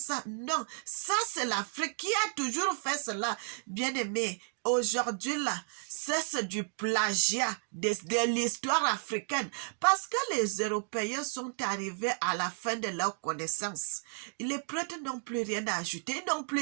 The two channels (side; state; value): left; silent; 56 dB below the other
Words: Non, ça, c'est l'Afrique qui a toujours fait cela. Bien aimé, aujourd'hui, là, c'est du plagiat de l'histoire africaine. Parce que les Européens sont arrivés à la fin de leur connaissance. Les prêtres n'ont plus rien à ajouter, ils n'ont